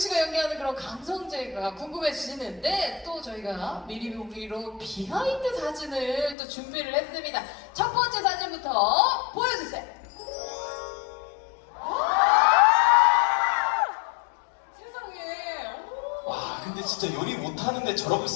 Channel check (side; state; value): right; drops out; at 6.4 s